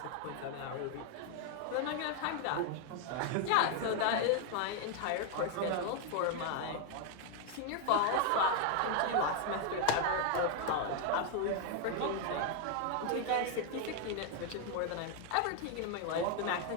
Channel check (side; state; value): both; different; correlation 0.00